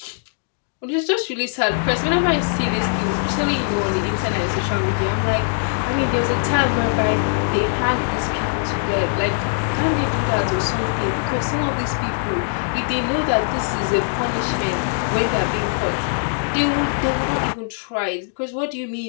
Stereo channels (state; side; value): silent; right; digital silence